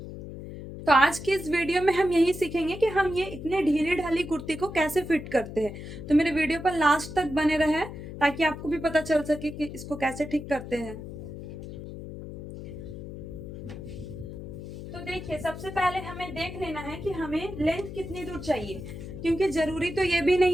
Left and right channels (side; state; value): left; noise; hum, 10 dB below the sound